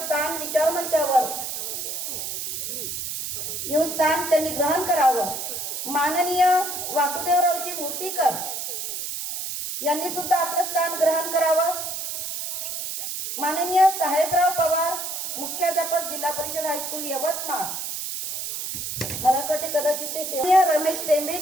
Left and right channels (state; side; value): noise; right; hiss, 5 dB below the sound